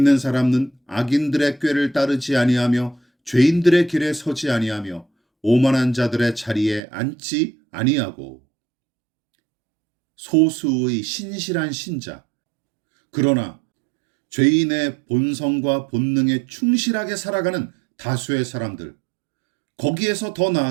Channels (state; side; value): drops out; left; at 6.8 s